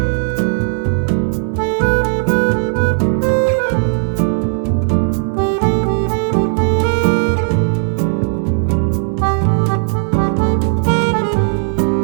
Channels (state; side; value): silent; left; digital silence